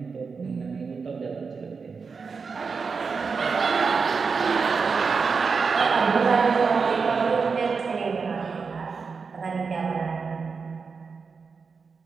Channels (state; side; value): quieter; left; 5.1 dB